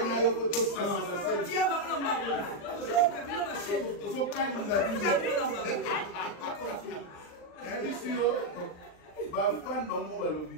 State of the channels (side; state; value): right; late; 39 ms